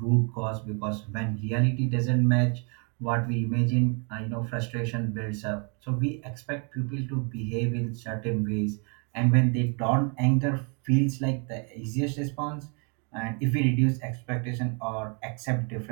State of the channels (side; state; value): left; quieter; 37.0 dB